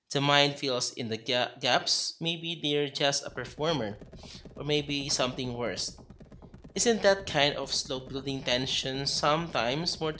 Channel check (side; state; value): both; identical; correlation 1.00